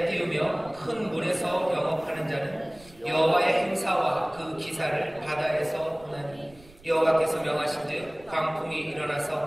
띄우며 큰 물에서 영업하는 자는 여호와의 행사와 그 기사를 바다에서 보나니 여호와께서 명하신즉 광풍이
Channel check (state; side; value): noise; right; rumble, 24 dB below the sound